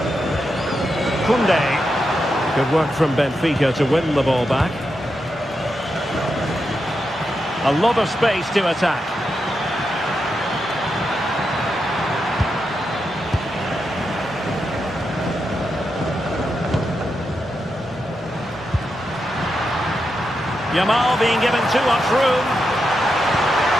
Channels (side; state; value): both; normal; correlation 0.86